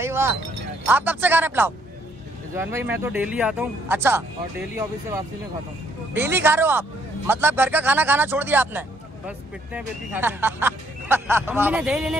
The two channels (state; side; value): normal; both; correlation 0.68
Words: वाह। आप कब से खा रहे हैं पुलाव? रिजवान भाई मैं तो डेली आता हूँ। अच्छा, और डेली ऑफिस से वापसी में खाता हूँ। डेली खा रहे हो आप? मतलब घर का खाना खाना छोड़ दिया आपने? बस पिटते हैं बेटी खाते हैं। अम्मी ने दही लेने